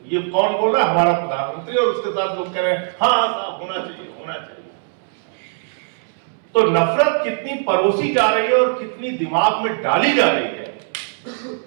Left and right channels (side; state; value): left; silent; 66 dB below the other